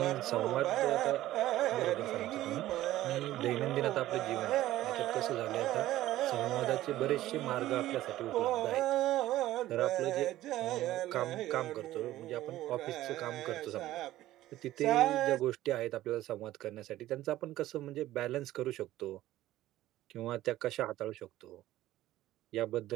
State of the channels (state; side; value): quieter; left; 14.9 dB